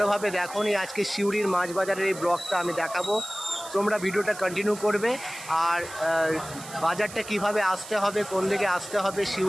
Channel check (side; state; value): right; noise; hiss, 14 dB below the sound